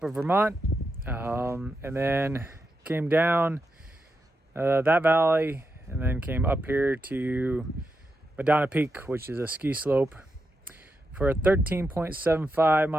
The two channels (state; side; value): normal; both; correlation 0.86